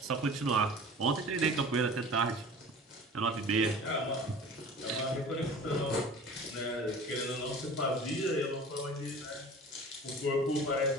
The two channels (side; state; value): both; normal; correlation 0.41